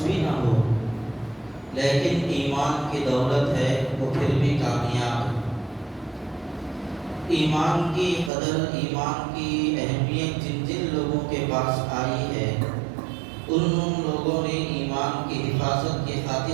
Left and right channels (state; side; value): drops out; left; at 8.3 s